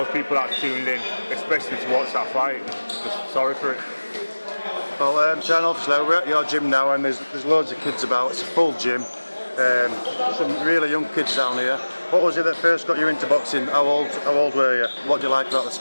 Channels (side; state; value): both; inverted; correlation -1.00